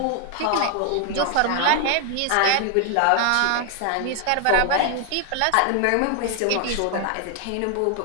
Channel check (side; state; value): both; different; correlation 0.01